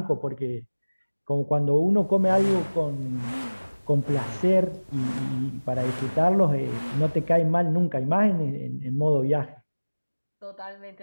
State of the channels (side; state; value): both; inverted; correlation -1.00